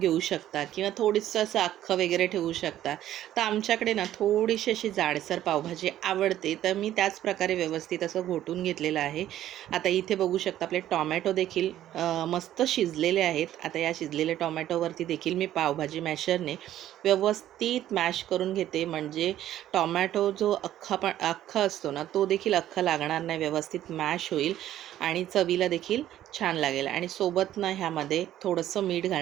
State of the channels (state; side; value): quieter; left; 12.5 dB